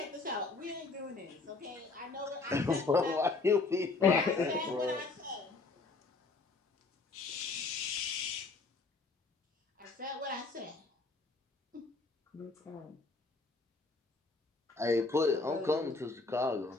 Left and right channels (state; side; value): quieter; right; 3.8 dB